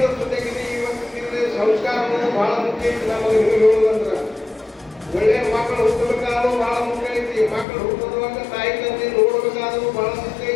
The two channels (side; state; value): right; drops out; at 7.7 s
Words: ಜೊತೆಗೆ ಇವತ್ತಿನ ಸಂಸ್ಕಾರಗಳು ಭಾಳ ಮುಖ್ಯ ಐತಿ. ನಮಗೆ ನಿಮಗೆ ಹೇಳೋದಂದ್ರೆ ಒಳ್ಳೆಯ ಮಕ್ಕಳು ಹುಟ್ಟಬೇಕಾದ್ರೂ ಭಾಳ ಮುಖ್ಯ ಐತಿ. ಮಕ್ಕಳು ಹುಟ್ಟುವಾಗ ತಾಯಿ ತಂದೆ ನೋಡಬೇಕಾದ್ರೂ ಭಾಳ ಮುಖ್ಯ